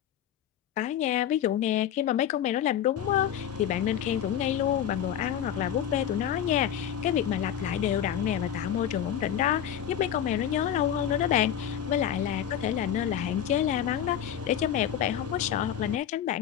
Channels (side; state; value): right; quieter; 9.9 dB